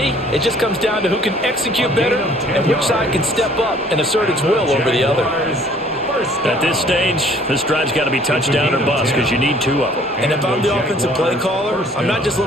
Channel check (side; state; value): both; normal; correlation 0.56